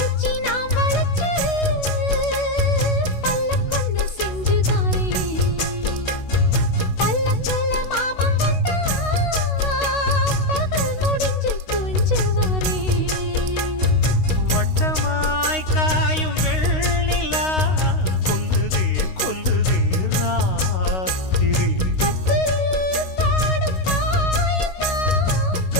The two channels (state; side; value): late; right; 16 ms